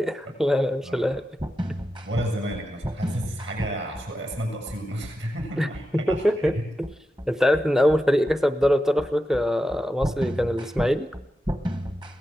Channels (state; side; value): normal; both; correlation 0.89